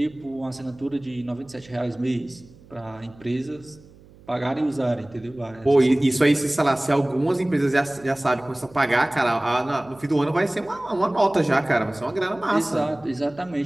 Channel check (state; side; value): noise; right; hum, 24 dB below the sound